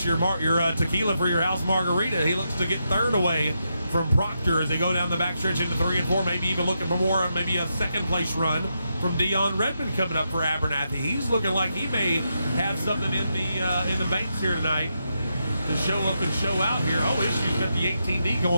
your tequila for your house margarita. He looks to get third away from Proctor as they go down the backstretch into 3 and 4, maybe even looking for more, maybe a second place run from Dion Redmond coming up for Abernathy. He's looking like he may have something in the banks here tonight to show up and show out here. Oh, issues got the 18D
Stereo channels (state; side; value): inverted; both; correlation -0.84